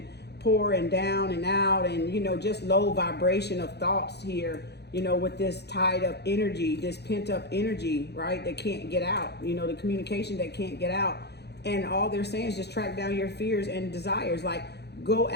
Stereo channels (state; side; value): late; right; 0.48 ms